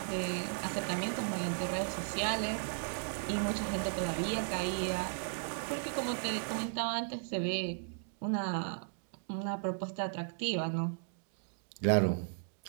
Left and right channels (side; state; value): left; silent; digital silence